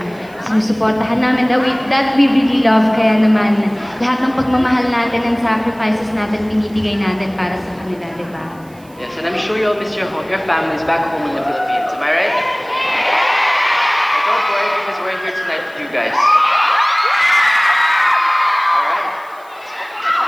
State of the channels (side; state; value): right; noise; hiss, 28 dB below the sound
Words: sinusuportahan namin that we really love. Kaya naman, lahat ng pagmamahal natin and sacrifices natin, binibigay natin para sa kanila, diba? Yes, and I'm sure you'll miss your families back home in the Philippines. Am I right? And don't worry because we're here tonight for you guys. Alright.